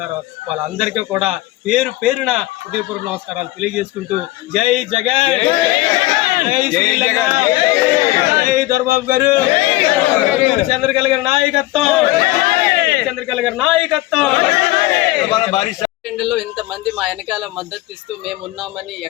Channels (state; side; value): quieter; right; 18.2 dB